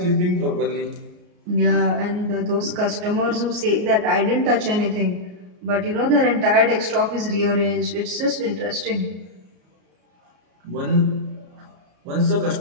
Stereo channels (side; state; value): left; late; 33 ms